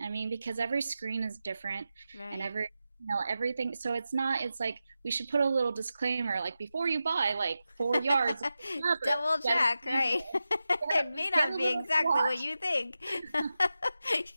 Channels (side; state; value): both; inverted; correlation -0.92